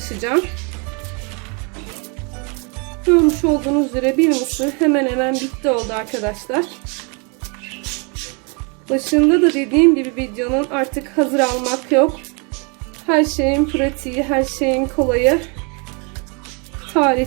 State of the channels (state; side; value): quieter; left; 34.0 dB